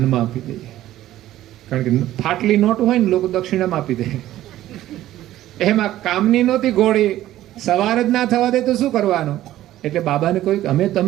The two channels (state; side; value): quieter; left; 14.0 dB